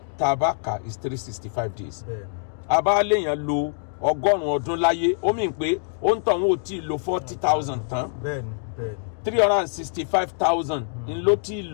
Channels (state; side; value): silent; right; digital silence